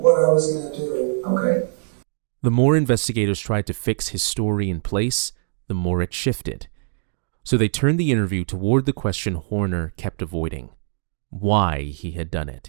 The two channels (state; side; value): silent; left; digital silence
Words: I was going to do. Okay. The more investigators tried to fix his story in place, the more it shifted. So they turned the interview toward the question Horner kept avoiding: why he had done